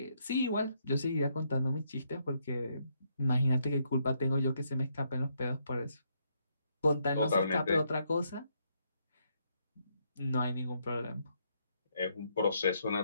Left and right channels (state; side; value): inverted; both; correlation -0.75